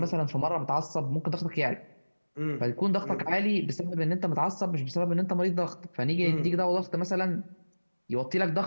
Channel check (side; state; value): both; inverted; correlation -1.00